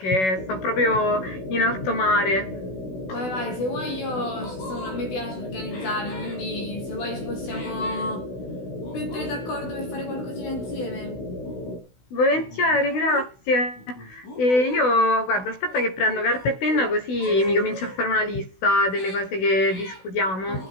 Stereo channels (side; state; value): right; late; 16 ms